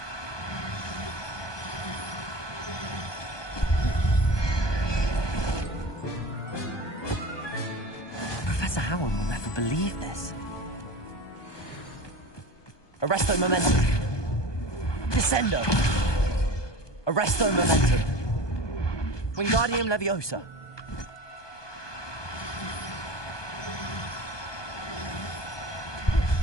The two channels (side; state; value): right; late; 1.2 ms